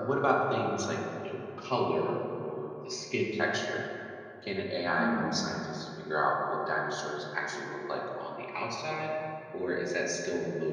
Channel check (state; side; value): identical; both; correlation 1.00